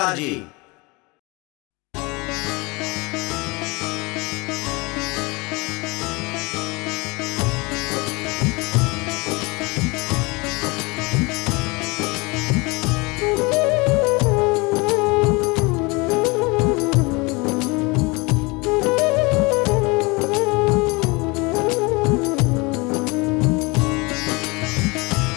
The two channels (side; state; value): right; quieter; 26.2 dB